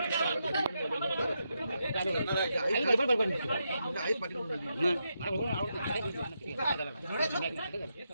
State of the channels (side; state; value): both; inverted; correlation -0.83